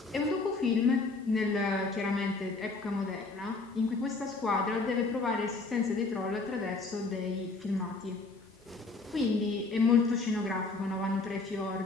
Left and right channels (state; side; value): quieter; right; 3.8 dB